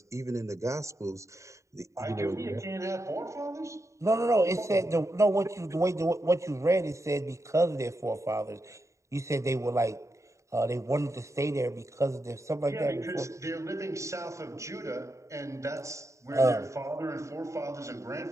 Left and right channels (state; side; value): late; left; 0.14 ms